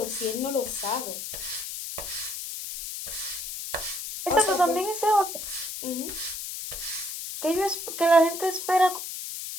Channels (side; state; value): left; noise; hiss, 7 dB below the sound